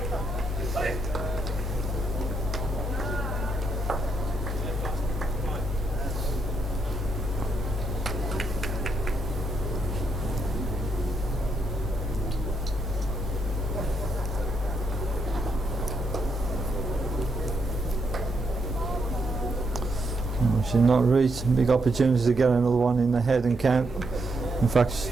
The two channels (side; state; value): both; normal; correlation 0.79